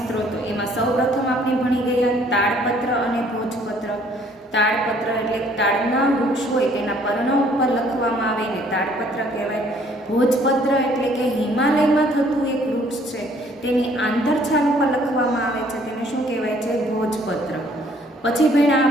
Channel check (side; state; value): both; normal; correlation 0.60